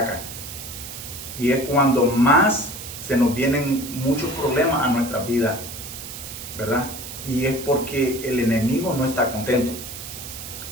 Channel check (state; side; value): noise; right; hiss, 10 dB below the sound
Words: y es cuando más se nos vienen muchos problemas a nuestra vida, ¿verdad? Y es porque el enemigo no está contento.